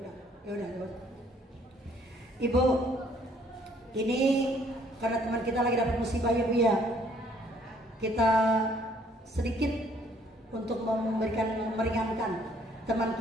udah. Ibu, ini karena teman kita lagi dapat musibah ya Bu ya. Kita sedikit untuk meringankan teman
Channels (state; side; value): normal; both; correlation 0.62